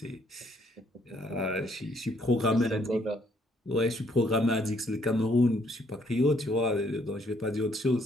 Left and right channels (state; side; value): normal; both; correlation 0.67